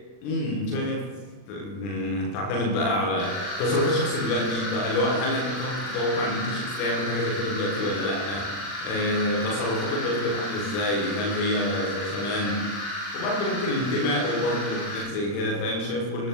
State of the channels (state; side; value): late; right; 40 ms